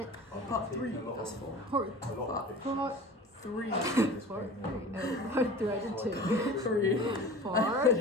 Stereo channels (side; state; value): both; normal; correlation 0.38